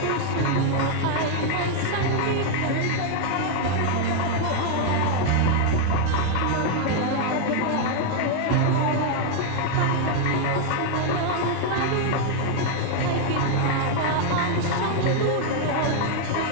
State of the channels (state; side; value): different; both; correlation 0.00